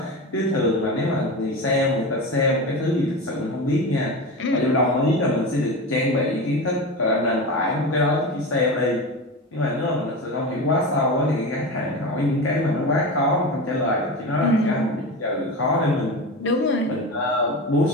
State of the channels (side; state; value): both; normal; correlation 0.25